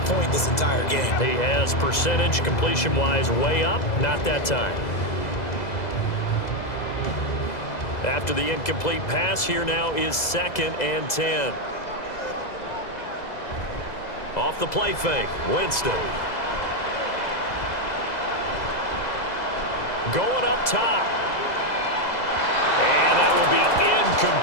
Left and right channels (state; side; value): late; right; 2.0 ms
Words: point this entire game. He has percentage completion-wise way up. Not that time. After the incomplete pass, here now is 2nd and 10. Off the play fake, Winston. Going up top. And that will be